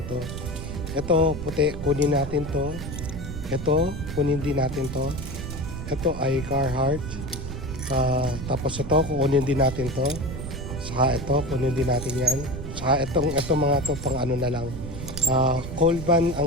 to. Ito puti, kunin natin to. Ito, kunin din natin to. Ito ay Carhartt. Tapos ito, kukunin din natin to. Saka ito, kunin din natin yan. Saka itong mga to pang ano na lang. Colban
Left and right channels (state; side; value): noise; right; rumble, 8 dB below the sound